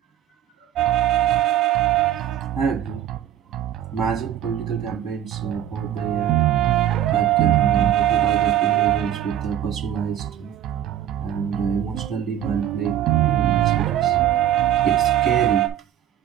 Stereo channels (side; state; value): left; quieter; 11.0 dB